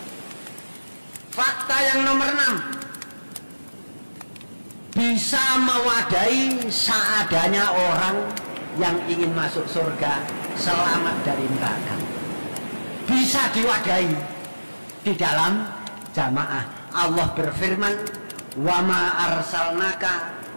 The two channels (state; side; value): inverted; both; correlation -1.00